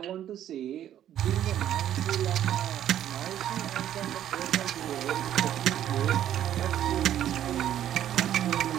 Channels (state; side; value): quieter; left; 11.2 dB